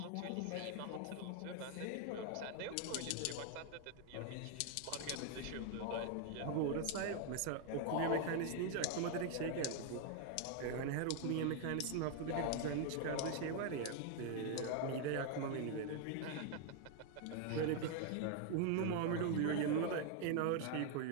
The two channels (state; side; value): different; both; correlation 0.00